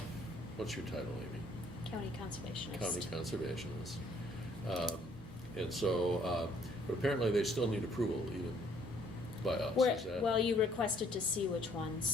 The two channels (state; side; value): normal; both; correlation 0.63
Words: What's your title, Amy? County Conservationist. County conservationists. And so, but apparently they still need approval even by us, is that? Well, you requested to see which